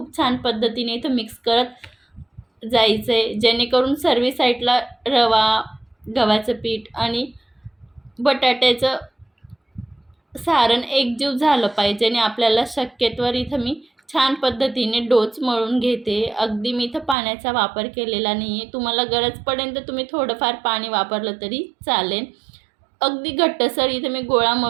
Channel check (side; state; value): left; drops out; at 17.2 s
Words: छान पद्धतीने इथं मिक्स करत जायचं आहे, जेणेकरून सर्व साईडला रवा, गव्हाचं पीठ आणि बटाट्याचं सारण एकजीव झालं पाहिजे. आणि आपल्याला शक्यतोवर इथं मी छान पद्धतीने डोच मळून घेते. अगदी मी इथं पाण्याचा वापर केलेला नाही आहे. तुम्हाला गरज पडेल तर तुम्ही थोडंफार पाणी वापरलं तरी चालेल. अगदी घट्टसर इथं मी गोळा